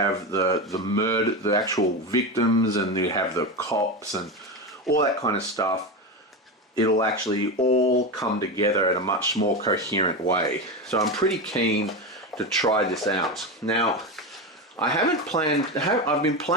the actual victims, and you have the cops and all that kind of stuff, it'll actually all come together in a much more coherent way. So I'm pretty keen to try this out. Now, I've been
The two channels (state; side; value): normal; both; correlation 0.18